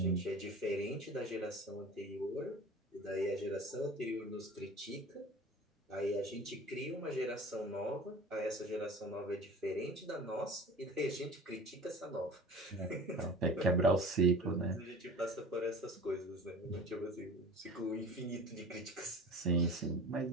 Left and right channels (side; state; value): both; normal; correlation 0.40